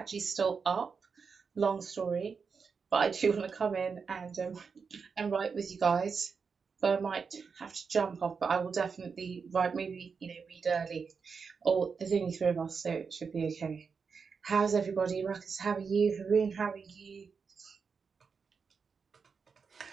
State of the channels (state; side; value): quieter; left; 5.5 dB